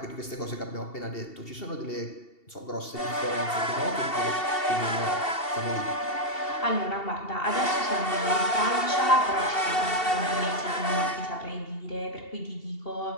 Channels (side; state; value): right; late; 2.7 ms